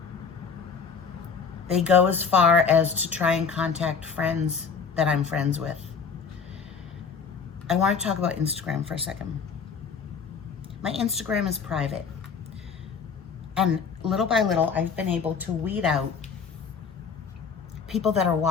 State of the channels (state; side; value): quieter; right; 5.9 dB